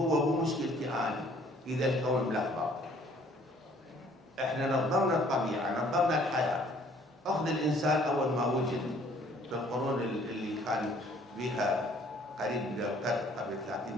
ومشكلتي أنا، إذا الكون ملخبط. إحنا نظمنا الطبيعة، نظمنا الحياة. أخذ الإنسان أول ما وجد في القرون اللي كان بها قريب من القرن قبل 30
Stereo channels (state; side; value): normal; both; correlation 0.58